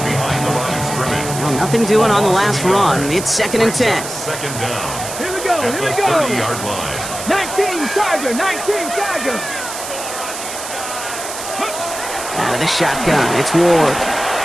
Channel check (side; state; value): right; noise; hiss, 8 dB below the sound